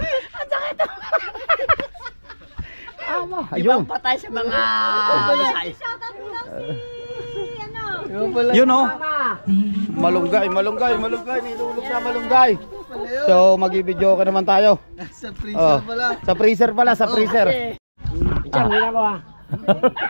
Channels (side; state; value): both; inverted; correlation -1.00